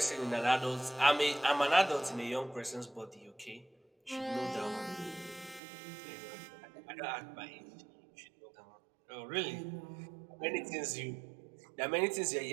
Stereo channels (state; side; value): drops out; left; at 5.6 s